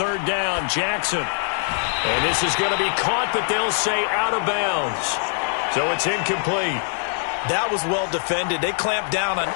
down, Jackson. And this is going to be caught, but they'll say out of bounds. So it's incomplete. That was well defended. They clamped down on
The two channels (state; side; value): silent; right; 58 dB below the other